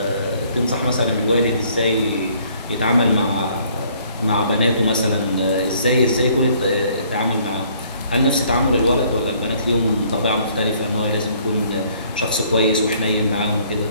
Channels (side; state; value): both; inverted; correlation -0.61